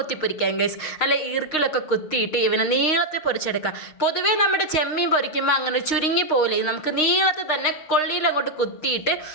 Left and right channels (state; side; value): late; right; 6.5 ms